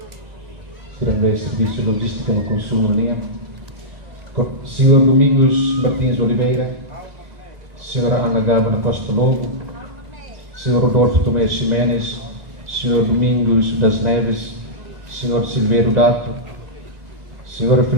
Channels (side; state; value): left; late; 2.0 ms